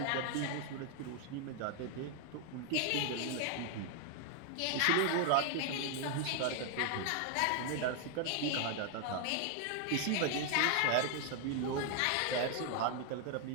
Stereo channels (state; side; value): different; both; correlation 0.00